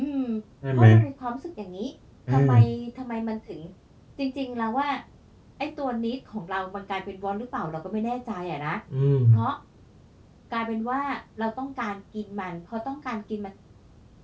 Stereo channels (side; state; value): both; identical; correlation 1.00